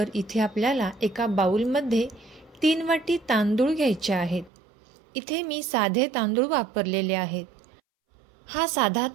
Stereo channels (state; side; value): drops out; left; at 4.5 s